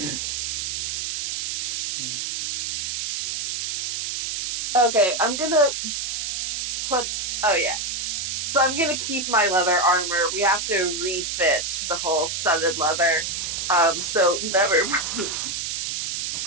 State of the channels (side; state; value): right; noise; hiss, 2 dB below the sound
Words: Okay, I'm gonna put. Oh yeah. So I'm gonna keep my leather armor. We have to refit the whole studded leather. So never mind.